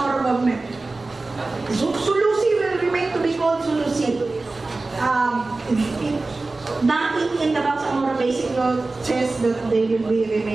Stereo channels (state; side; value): quieter; left; 3.4 dB